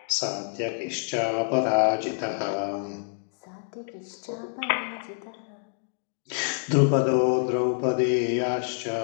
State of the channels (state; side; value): silent; right; digital silence